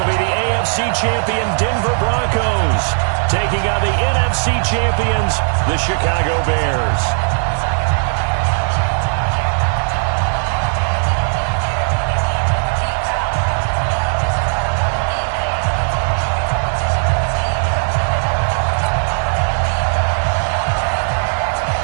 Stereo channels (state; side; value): silent; left; 68 dB below the other